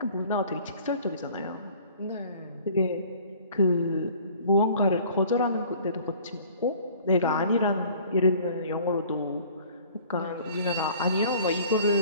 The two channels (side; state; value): both; inverted; correlation -0.51